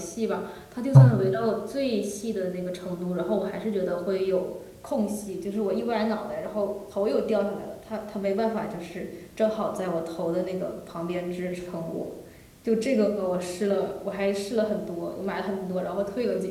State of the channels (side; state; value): both; identical; correlation 1.00